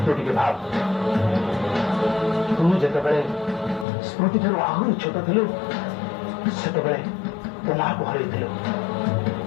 ତୁ ଟିକେ ଭାବ, ତୁ ଯେତେବେଳେ ସ୍ମୃତି ଠାରୁ ଆହୁରି ଛୋଟ ଥିଲୁ ସେତେବେଳେ ତୋ ମାଆକୁ ହରେଇଥିଲୁ।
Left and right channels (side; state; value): right; drops out; at 3.9 s